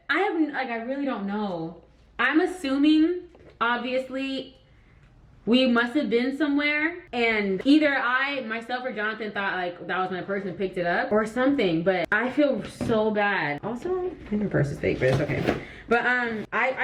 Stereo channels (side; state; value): both; identical; correlation 1.00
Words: I really don't know. I'm assuming, obviously, we must have been somewhere and either myself or Jonathan thought like that was my purse and picked it up or something, but I feel so bad. Also, I think her purse is fake, but it's okay. But